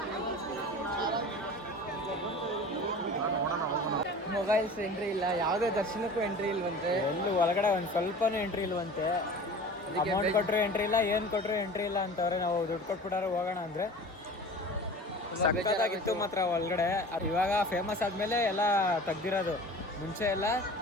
ಮೊಬೈಲ್ಸ್ ಎಂಟ್ರಿ ಇಲ್ಲ, ಯಾವುದೇ ದರ್ಶನಕ್ಕೂ ಎಂಟ್ರಿ ಇಲ್ವಂತೆ. ಎಲ್ಲೂ ಒಳಗಡೆ ಒಂದು ಸ್ವಲ್ಪನೂ ಎಂಟ್ರಿ ಇಲ್ವಂತೆ. ಅಮೌಂಟ್ ಕೊಟ್ಟರು ಎಂಟ್ರಿ ಇಲ್ಲ, ಏನು ಕೊಟ್ಟರು ಎಂಟ್ರಿ ಇಲ್ಲ ಅಂತವ್ರೆ. ನಾವು ದುಡ್ಡು ಕೊಟ್ಬಿಟ್ಟಾರೆ ಹೋಗೋಣ ಅಂದರೆ ಸಕ್ಕತ್ತಾಗಿತ್ತು ಮಾತ್ರ ಒಳಗಡೆ. ಇವಾಗ ಫೇಮಸ್ ಆದಮೇಲೆ ಎಲ್ಲ ತೆಗ್ದಿರೋದು. ಮುಂಚೆ ಎಲ್ಲ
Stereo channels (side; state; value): both; normal; correlation 0.39